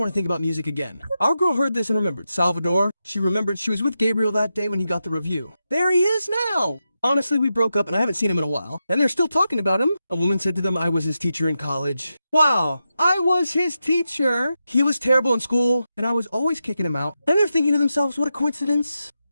to think about music again. Our girl heard this and remembered. Salvador, she remembered she was with Gabriel that day when he got the review. There he is now. Honestly, we broke up and I haven't seen him in a while, and they're still talking about him. A woman said to them I was his teacher in college. Wow, I was his teacher. He was terrible in school, and I was always kicking him out. And they're thinking to themselves, what a coincidence.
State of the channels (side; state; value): both; inverted; correlation -0.88